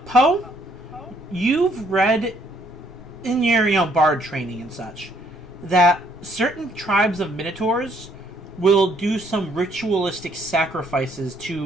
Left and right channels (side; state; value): both; normal; correlation 0.66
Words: Poe, you've read in your bard training and such that certain tribes of minotaurs will do some ritualistic sacrifices to